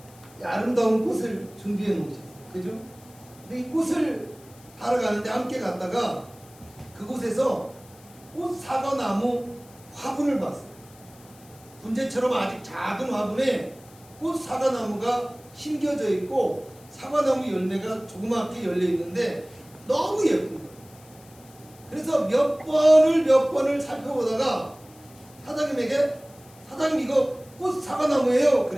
아름다운 꽃을 준비해 놓으셨어요. 그죠? 근데 이 꽃을 사러 가는데 함께 갔다가 그곳에서 꽃 사과나무 화분을 봤어요. 분재처럼 아직 작은 화분에 꽃 사과나무가 심겨져 있고 사과나무 열매가 조그맣게 열려 있는데 너무 예쁜 거예요. 그래서 몇 번을 살펴보다가 사장님에게 사장님 이거 꽃 사과나무예요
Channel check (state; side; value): noise; left; hiss, 25 dB below the sound